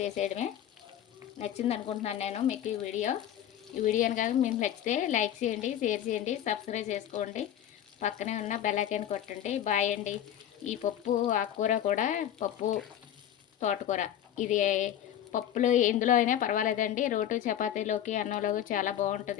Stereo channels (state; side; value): quieter; right; 10.8 dB